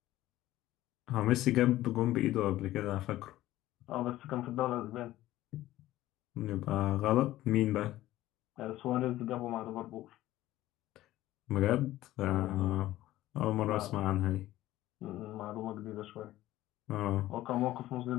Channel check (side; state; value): right; quieter; 15.3 dB